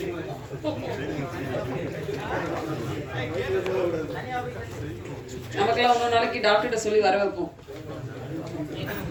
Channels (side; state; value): both; identical; correlation 1.00